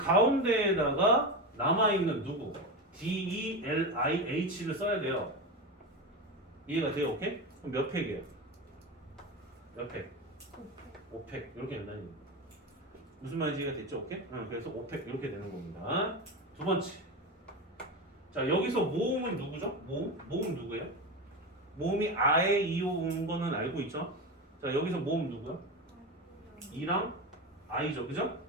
남아있는 누구? DELIH를 써야 돼요. 이해가 돼요? 오케이? 그럼 몇 팩이에요? 몇 팩? 5팩 이렇게 된다는 얘기예요. 무슨 말인지 이해가 됐죠? 오케이? 그래서 5팩 이렇게 되는 겁니다. 두 번째. 자, 여기서 모음은 누구죠? 모음 누구예요? 모음이 아에 이오 온 거는 알고 있죠? 자, 여기서 모음 누구야? 이랑 아이죠, 그죠?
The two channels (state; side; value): normal; both; correlation 0.20